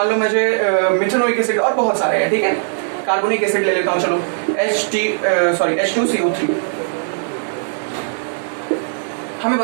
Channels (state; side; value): silent; left; digital silence